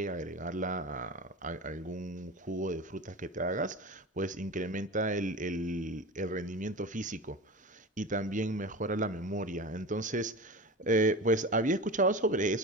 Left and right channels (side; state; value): both; normal; correlation 0.30